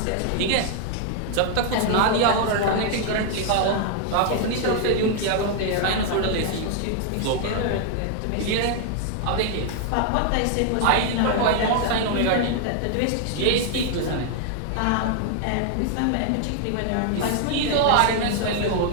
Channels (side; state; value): both; different; correlation 0.00